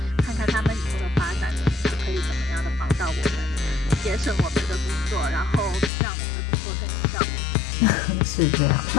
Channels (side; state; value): right; drops out; at 5.9 s